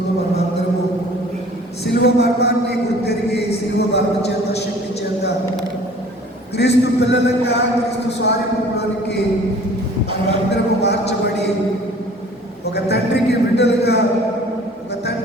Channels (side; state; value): both; normal; correlation 0.49